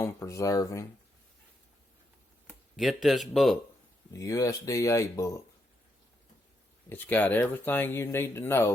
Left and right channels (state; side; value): normal; both; correlation 0.80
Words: preserving, get this book, the USDA book. It's got everything you need to